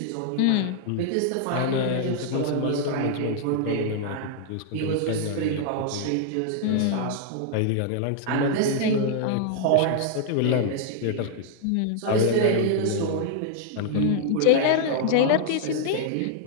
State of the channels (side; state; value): both; different; correlation 0.00